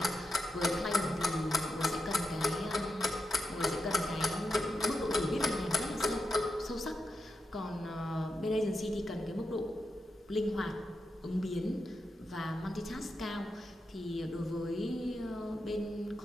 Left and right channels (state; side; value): normal; both; correlation 0.86